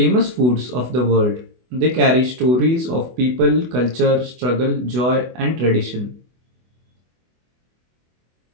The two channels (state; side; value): late; left; 24 ms